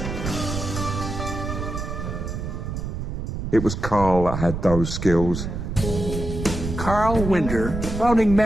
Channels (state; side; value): noise; right; rumble, 5 dB below the sound